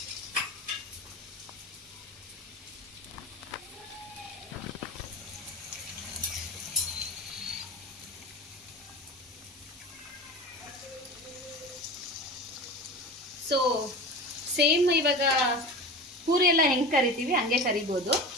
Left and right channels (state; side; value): normal; both; correlation 0.31